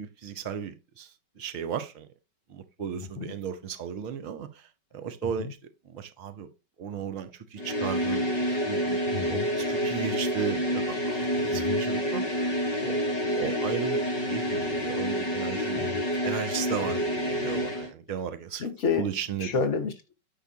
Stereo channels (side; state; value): right; late; 5.3 ms